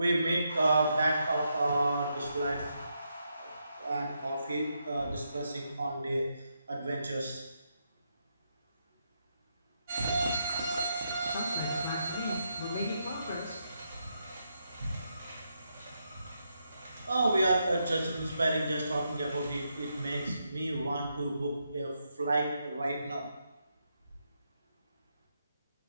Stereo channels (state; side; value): inverted; both; correlation -0.81